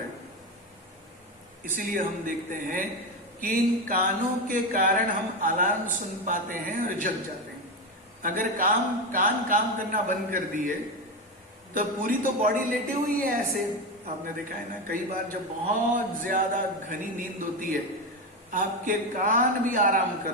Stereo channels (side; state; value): both; normal; correlation 0.15